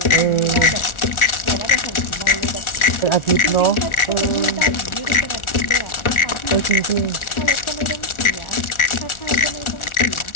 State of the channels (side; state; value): right; late; 1.4 ms